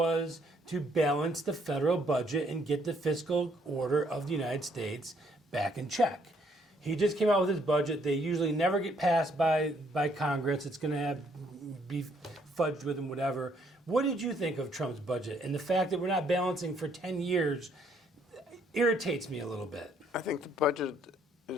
to balance the federal budget and get the fiscal order of the United States back in check. He just came out with his budget. They usually never get passed by Congress. It's going to be fudged with and whatever. What did you think of Trump's budget? And the fact that we're not balancing for 10 years irritates me a little bit. I think the budget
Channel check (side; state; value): both; normal; correlation 0.67